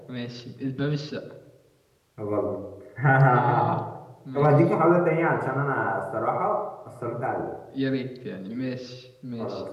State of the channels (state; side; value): identical; both; correlation 1.00